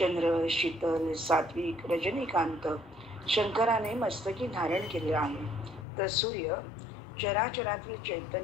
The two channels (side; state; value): right; drops out; at 5.9 s